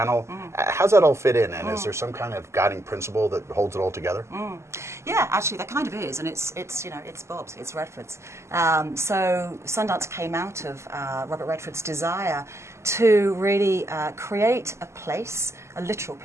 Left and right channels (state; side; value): late; left; 0.13 ms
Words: How's that all fit in, and is there some kind of guiding principle that holds it all together? Yeah, actually, there kind of is, and it's Bob's, it's Redford's. So Sundance came out of Robert Redford's desire to really create a place, a literal